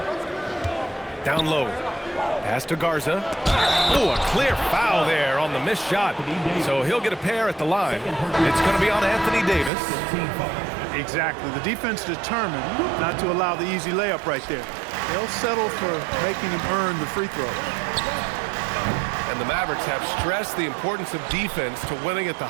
Down low. Pass to Garza. Oh, a clear foul there on the missed shot. So he'll get a pair at the line. It's going to be on Anthony Davis. Exactly. The defense determined not to allow the easy layup right there. They'll settle for making him earn the free throw. And the Mavericks have stressed the importance of defense to winning at the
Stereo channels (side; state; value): left; drops out; at 9.7 s